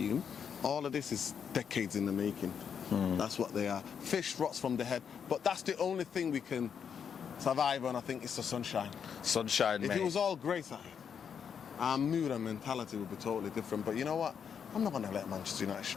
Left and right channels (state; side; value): quieter; right; 7.3 dB